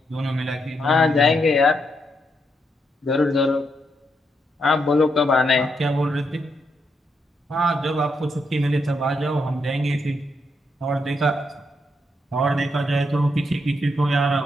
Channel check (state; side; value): normal; both; correlation 0.79